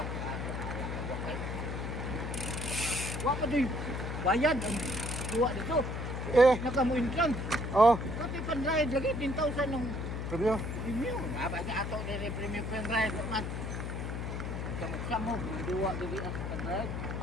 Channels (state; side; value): noise; left; hum, 4 dB below the sound